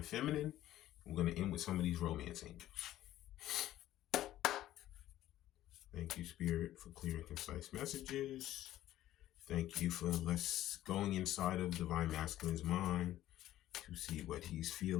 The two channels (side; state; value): right; quieter; 13.8 dB